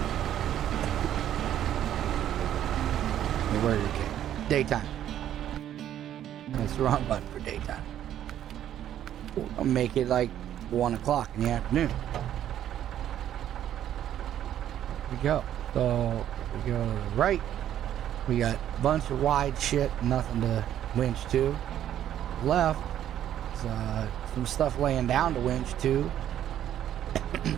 Where are your kick? Daytime. That's the wrong button for daytime. I'll make it like 1 o'clock in the afternoon. There we go. So if we go to the right, We got a bunch of wide shit, nothing to winch to. Left is some stuff laying down to winch to.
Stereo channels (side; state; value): left; quieter; 11.1 dB